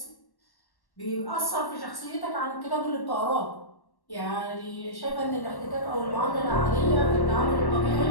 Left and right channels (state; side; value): late; right; 1.1 ms